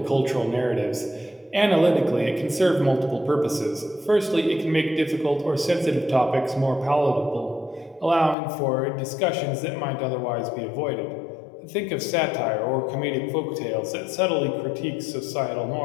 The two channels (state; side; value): drops out; right; at 8.3 s